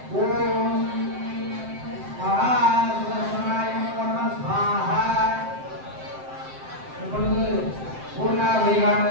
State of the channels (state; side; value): late; left; 7.7 ms